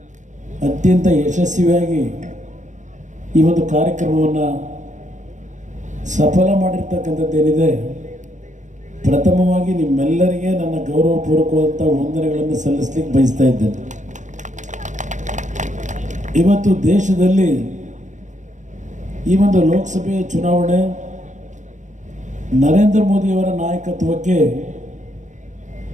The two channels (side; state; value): left; late; 0.35 ms